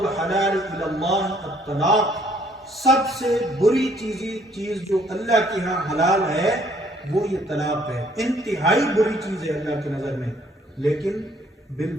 الی اللہ الطلاق، سب سے بری چیز جو اللہ کے ہاں حلال ہے وہ یہ طلاق ہے، انتہائی بری چیز ہے اللہ کی نظر میں۔ لیکن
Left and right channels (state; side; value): normal; both; correlation 0.63